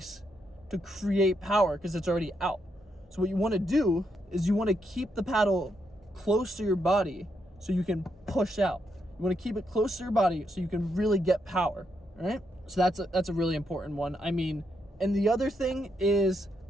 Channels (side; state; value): both; normal; correlation 0.80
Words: to create power because it's already out. So what you want to do is you want to keep the paddle close to your body so you can push out. You want to keep it close to your body so you can really get power, all right? So that's a really important one. I mean, and the other thing is